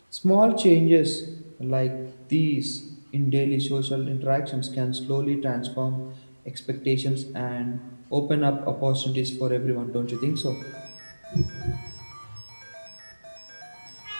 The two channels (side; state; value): both; inverted; correlation -1.00